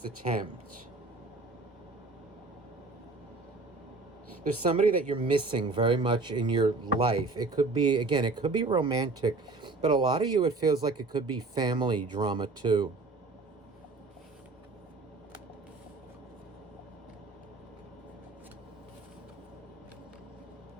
attempt? There's somebody that you're missing very much in your life. It could be, again, it could be romantic, but a lot of you, it feels like it could be family drama too.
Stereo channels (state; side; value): quieter; left; 3.6 dB